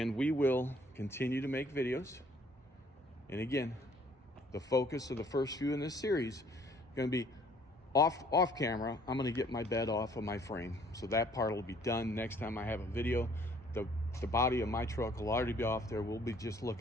we will continue to make videos. And again, the focus of the first few in this series going to be off camera. I'm going to get my bed off of my frame, so that part will be done. Next time I have a video, the body of my truck will already be off there. We'll be just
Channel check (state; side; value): normal; both; correlation 0.59